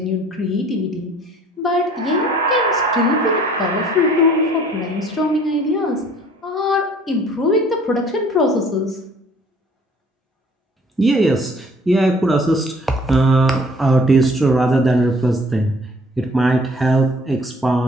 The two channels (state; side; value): normal; both; correlation 0.55